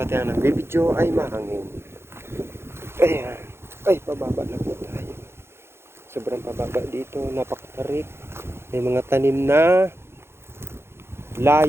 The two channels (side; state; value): left; late; 0.12 ms